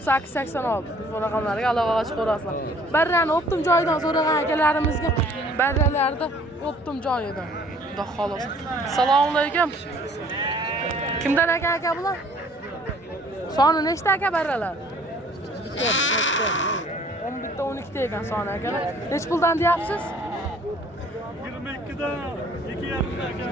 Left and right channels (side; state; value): both; normal; correlation 0.56